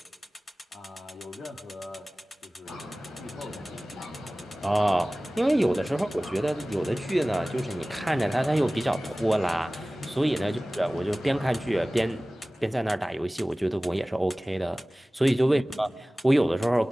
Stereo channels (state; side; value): normal; both; correlation 0.98